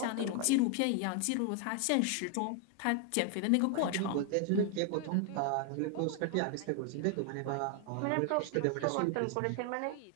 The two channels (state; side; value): different; both; correlation 0.00